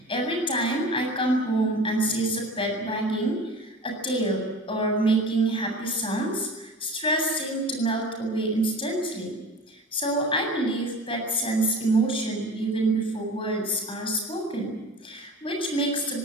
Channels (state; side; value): normal; both; correlation 0.37